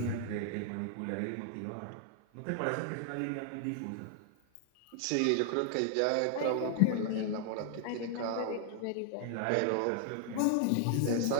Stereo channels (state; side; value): different; both; correlation 0.00